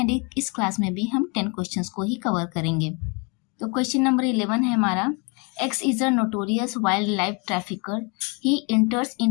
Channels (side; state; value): right; quieter; 32.4 dB